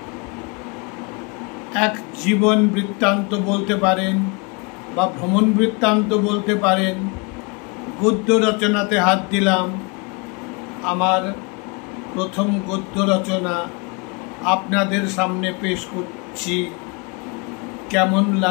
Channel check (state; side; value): quieter; right; 30.8 dB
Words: এক জীবন বৃত্তান্ত বলতে পারেন বা ভ্রমণ বৃত্তান্ত বলতে পারেন, গদ্য রচনাতে হাত দিলাম। আমার প্রথম গদ্য রচনা আপনাদের সামনে পেশ করছি। কেমন